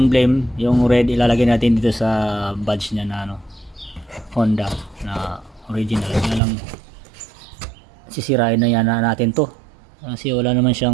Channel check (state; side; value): drops out; left; at 6.4 s